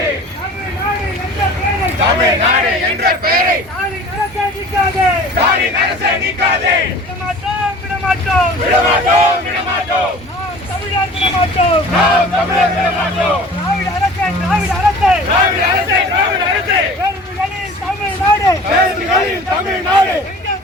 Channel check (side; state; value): both; normal; correlation 0.43